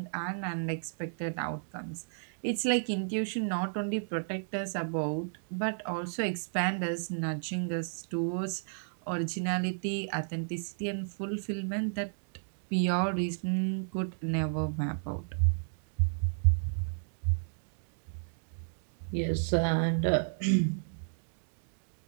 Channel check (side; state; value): left; silent; digital silence